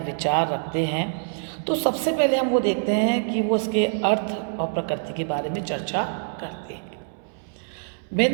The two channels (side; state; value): left; silent; 62 dB below the other